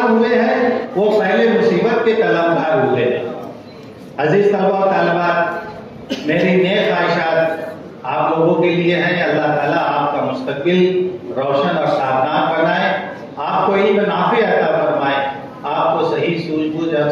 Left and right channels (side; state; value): both; identical; correlation 1.00